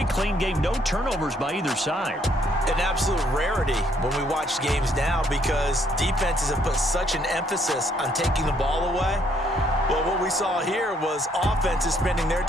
clean game. No turnovers by either side. An absolute rarity when we watch games now because defenses have put such an emphasis on taking the ball away. Well, what we saw here was offenses spending their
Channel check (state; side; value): normal; both; correlation 0.68